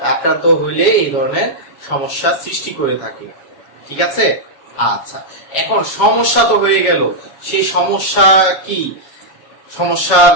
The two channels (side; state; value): right; late; 7.1 ms